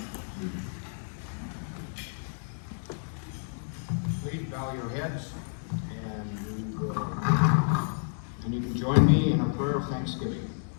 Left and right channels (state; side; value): silent; right; digital silence